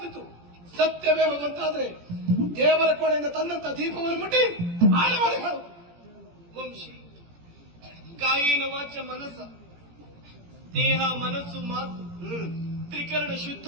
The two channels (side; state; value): left; late; 17 ms